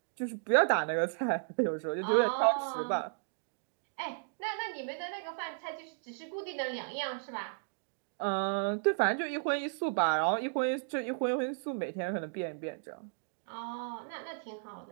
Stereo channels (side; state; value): left; silent; digital silence